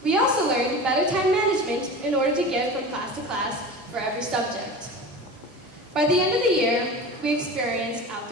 We also learned better time management in order to get from class to class for every subject. By the end of the year, we experienced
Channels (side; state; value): both; normal; correlation 0.32